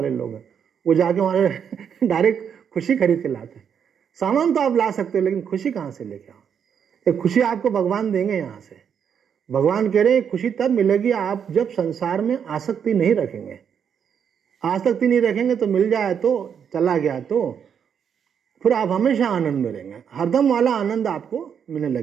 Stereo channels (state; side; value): quieter; left; 7.7 dB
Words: लोग हैं, वो जाके वहाँ डायरेक्ट खुशी खरीद के लाते हैं। सामान तो आप ला सकते हो, लेकिन खुशी कहाँ से लेके आओ? ये खुशी आपको भगवान देंगे यहाँ से। भगवान कह रहे हैं खुशी तब मिलेगी आप जब संसार में आसक्ति नहीं रखेंगे। आसक्ति नहीं रखेंगे तो मिल जाए तो, चला गया तो, फिर आप हमेशा आनंद में रहेंगे, हरदम वाला आनंद आपको मिलने